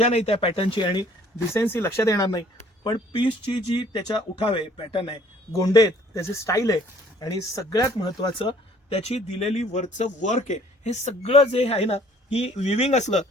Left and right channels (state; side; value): normal; both; correlation 0.58